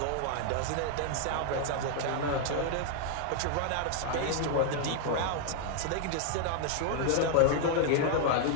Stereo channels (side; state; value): both; different; correlation 0.00